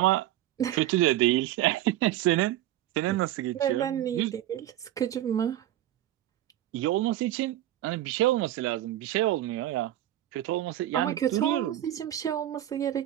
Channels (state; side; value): quieter; left; 13.4 dB